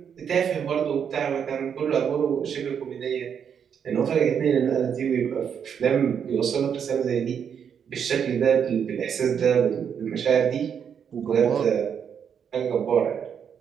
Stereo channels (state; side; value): quieter; left; 7.7 dB